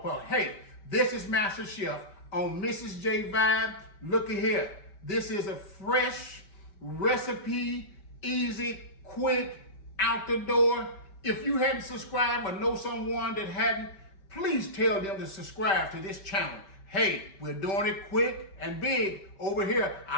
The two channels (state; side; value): late; right; 5.2 ms